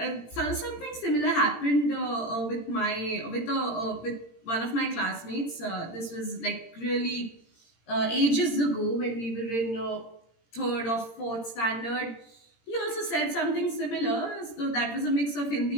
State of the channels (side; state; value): right; late; 17 ms